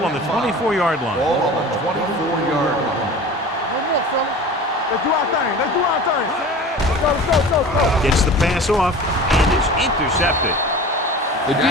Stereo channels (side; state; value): both; normal; correlation 0.38